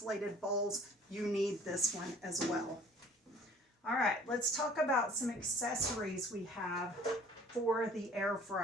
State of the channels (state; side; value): normal; both; correlation 0.52